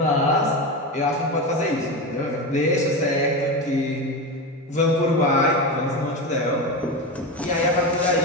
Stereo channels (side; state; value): both; normal; correlation 0.20